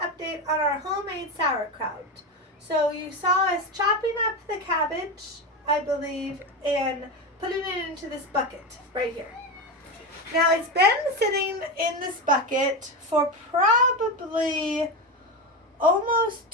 update on our homemade sauerkraut. So you saw us chopping up the cabbage, I believe, and putting it into this bucket right here. Now it's been sitting in this bucket for probably almost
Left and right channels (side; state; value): both; normal; correlation 0.17